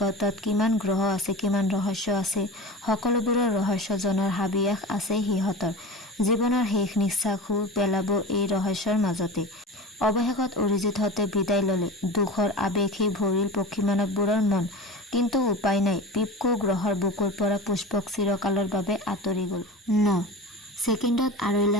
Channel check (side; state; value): both; normal; correlation 0.31